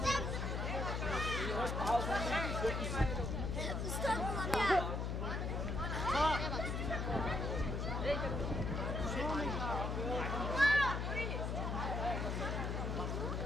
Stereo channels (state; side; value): noise; left; hum, 1 dB below the sound